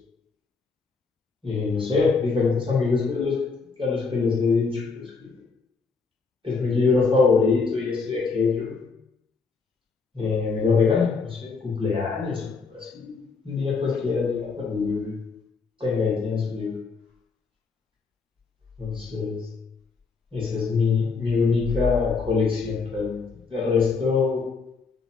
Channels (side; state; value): right; quieter; 4.6 dB